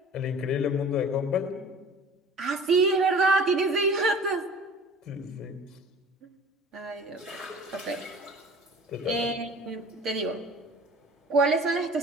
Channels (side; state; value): both; normal; correlation 0.44